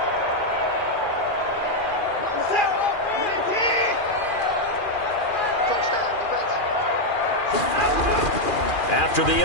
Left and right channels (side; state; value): right; late; 2.4 ms